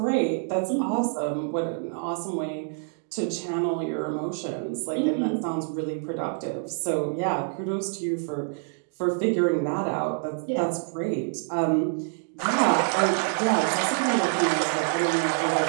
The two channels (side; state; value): left; silent; 61 dB below the other